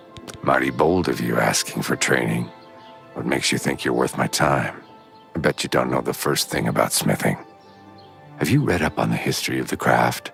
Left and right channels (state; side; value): identical; both; correlation 1.00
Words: Mighty bold of you asking for training. What makes you think you're worth my time? I bet you don't know the first thing about smithing. Have you read up on the history of the craft?